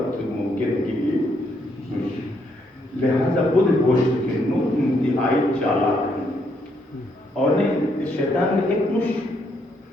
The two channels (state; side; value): normal; both; correlation 0.74